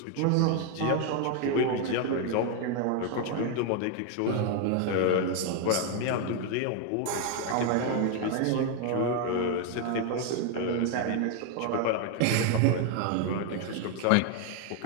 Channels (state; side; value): different; both; correlation 0.01